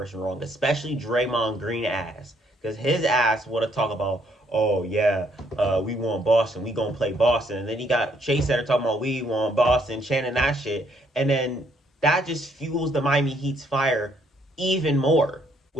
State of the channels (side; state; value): both; normal; correlation 0.69